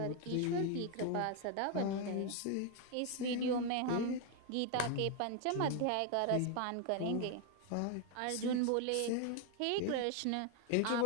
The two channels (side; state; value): both; different; correlation 0.01